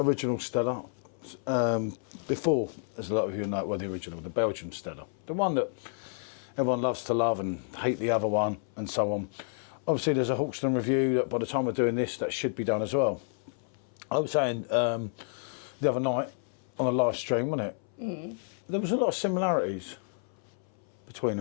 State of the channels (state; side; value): silent; right; 58 dB below the other